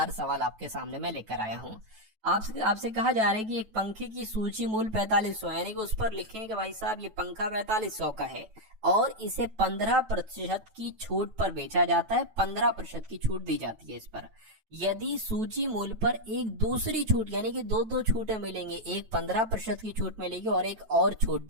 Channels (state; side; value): late; left; 9.2 ms